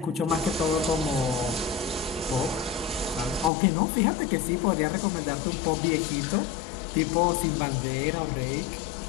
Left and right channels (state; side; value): drops out; right; at 3.5 s